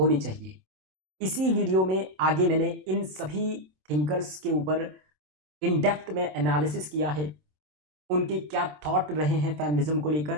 चाहिए। इसी वीडियो में आगे मैंने इन सभी थिंकर्स के ऊपर इन डेप्थ में एनालिसिस किया है, उनके क्या थॉट रहे हैं फेमिनिज्म को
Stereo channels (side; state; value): left; late; 27 ms